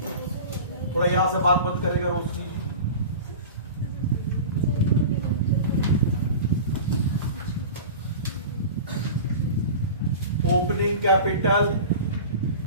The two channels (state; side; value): inverted; both; correlation -0.34